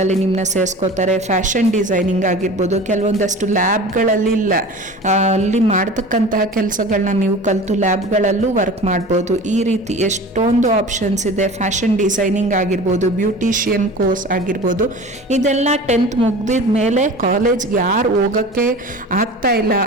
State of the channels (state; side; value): normal; both; correlation 0.37